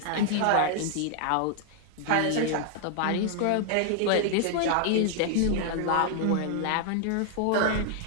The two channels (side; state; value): both; different; correlation 0.00